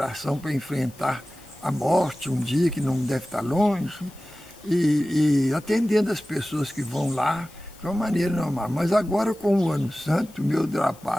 para enfrentar a morte um dia que não deve estar longe, e atendendo as pessoas que vão lá de uma maneira normal. Mas agora, com o Ano Santo, meu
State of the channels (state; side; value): noise; left; hiss, 25 dB below the sound